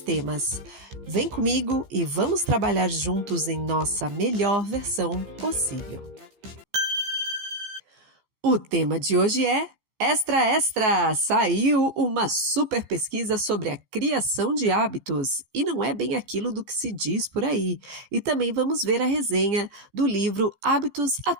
temas. Vem comigo e vamos trabalhar juntos em nossa melhor versão possível. O tema de hoje é Extra, extra! Saiu uma super pesquisa sobre a criação de hábitos e não é bem aquilo do que se diz por aí. E também vamos ver a resenha do livro Hábitos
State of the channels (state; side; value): late; left; 15 ms